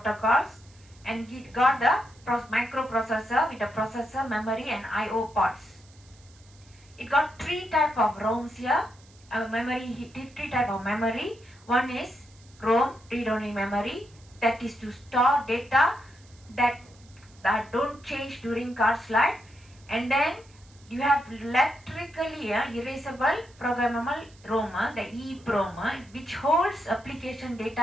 and it got the microprocessor with the processor, memory, and I/O ports. It got three type of ROMs here. Three type of memory. One is ROM, read-only memory, that is to store data that don't change during card's life. And then you have electrically erasable programmable ROM, the EEPROM, which holds application data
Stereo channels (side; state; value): right; noise; hiss, 27 dB below the sound